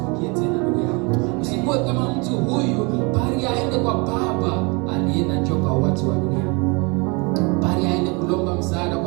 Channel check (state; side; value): quieter; left; 29.7 dB